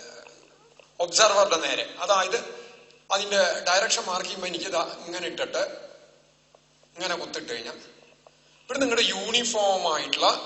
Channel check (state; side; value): identical; both; correlation 1.00